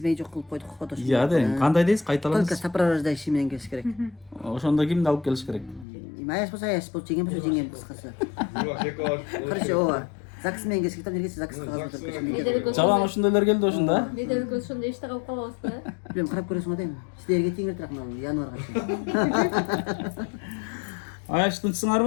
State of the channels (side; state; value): right; drops out; at 5.9 s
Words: жок кылып койдук го. Иә, да, кандай дейсиз? Кайталаңыз. Только сопровождающий менен келиш керек. Ошондо кимди алып келиш керек? Аяш болсо жеңем болсо жеңем кыскасы. Бирок эки баш. Короче, ооба. ЗАГС менен келиш керек, нерсе ЗАГС кагаз өтүп Жалаң ошондойлор келди ошондо. Бедер көз ошондо иште калып калабыз да. Билем, карап көрөсүң го дейм. Силерге тең эле мына январга чейин. Аяш